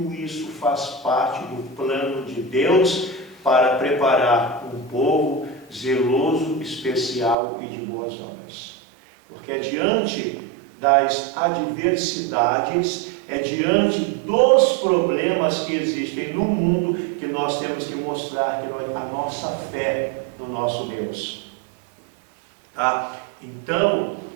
isso faz parte do plano de Deus para preparar um povo zeloso, especial e de boas obras. Porque é diante das adversidades, é diante dos problemas que existem no mundo que nós temos que mostrar a nossa fé no nosso Deus. Tá? Então,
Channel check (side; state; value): left; drops out; at 7.4 s